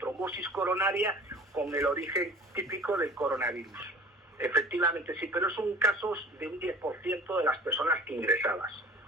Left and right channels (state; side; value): normal; both; correlation 0.44